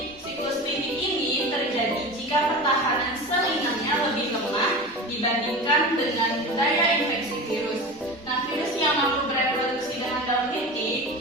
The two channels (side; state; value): both; normal; correlation 0.30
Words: siklus litik ini terjadi jika pertahanan sel inangnya lebih lemah dibandingkan dengan daya infeksi virus. Nah, virus yang mampu bereproduksi dengan dalam